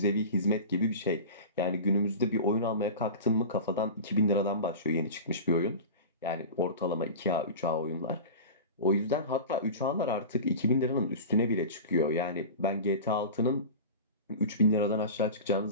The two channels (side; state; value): both; inverted; correlation -0.31